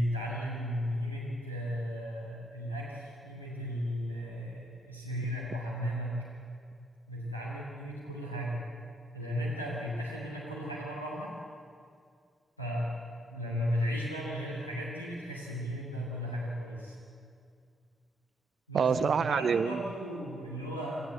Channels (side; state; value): both; normal; correlation 0.72